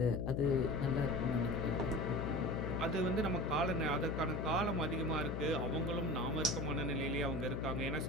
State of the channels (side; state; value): left; noise; hum, 1 dB below the sound